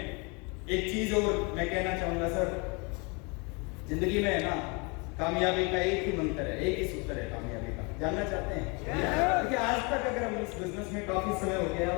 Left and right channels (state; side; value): quieter; right; 30.7 dB